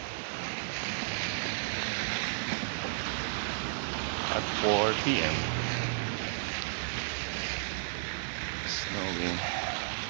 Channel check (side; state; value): left; silent; 56 dB below the other